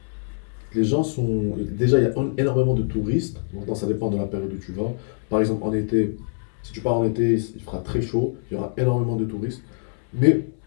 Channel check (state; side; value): silent; right; 63 dB below the other